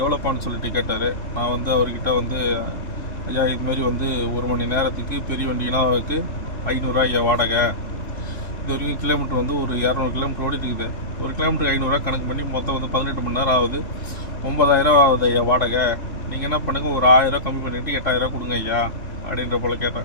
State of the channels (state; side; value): late; right; 3.3 ms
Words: எவ்வளோப்பான்னு சொல்லிட்டு கேட்டார். நான் வந்து அவர்கிட்ட வந்து, ஐயா இதுமாரி வந்து 1 மணி நேரத்துக்கு பெரிய வண்டினாவுக்கு 500 ஐயா வாடகை. இது வரைக்கும் கிலோமீட்டர் வந்து ஒரு 200 கிலோமீட்டர் ஓடிட்டு இருக்குது. ஒரு கிலோமீட்டருக்கு 500 கணக்கு பண்ணி மொத்தம் வந்து 18 மணி நேரம் ஆகுது. 9000 ஆகுது ஐயா வாடகை. நீங்கள் என்ன பண்ணுங்கள், ஒரு 1000 கம்மி பண்ணிவிட்டு 8000 கொடுங்க ஐயா அப்படின்ற போல்